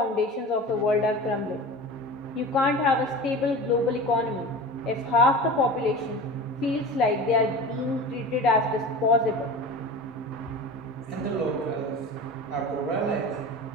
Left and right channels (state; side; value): normal; both; correlation 0.33